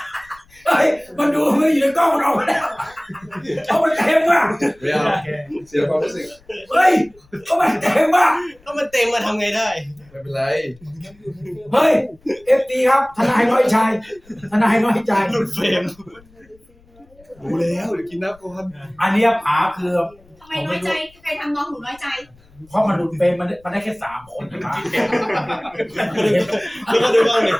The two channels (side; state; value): left; noise; rumble, 29 dB below the sound